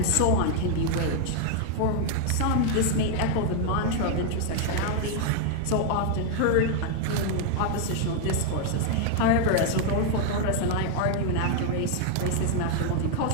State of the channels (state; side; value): different; both; correlation 0.00